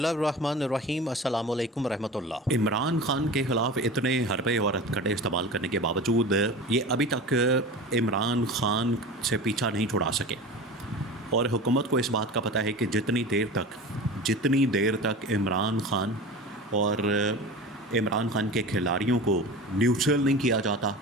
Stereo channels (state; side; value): normal; both; correlation 0.33